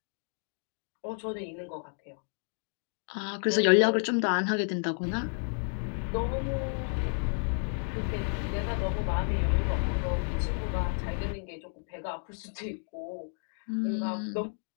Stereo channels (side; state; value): right; silent; 57 dB below the other